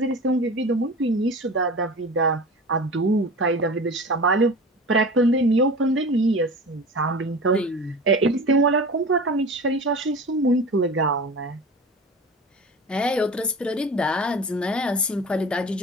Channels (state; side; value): normal; both; correlation 0.34